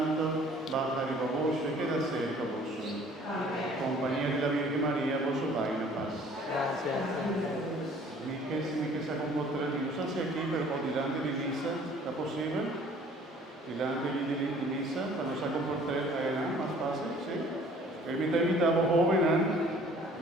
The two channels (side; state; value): both; normal; correlation 0.53